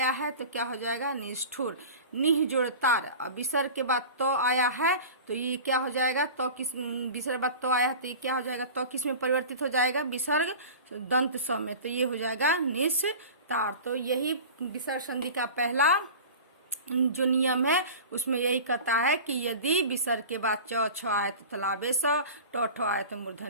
है तो क्या हो जाएगा, निष्ठुर। निह जोड़ तार, विसर्ग के बाद तो आया है तो ये क्या हो जाएगा, तो किस विसर्ग बाद तो आया है तो ये क्या हो जाएगा, तो किस में परिवर्तित हो जाएगा, विसर्ग दंत स में, तो ये हो जाएगा निस्तार। तो यही विसर्ग संधि का पहला जो नियम है उसमें यही कहता है कि यदि विसर्ग के बाद च छ आए तो तलाबे स, ट ठ आए तो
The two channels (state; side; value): inverted; both; correlation -0.36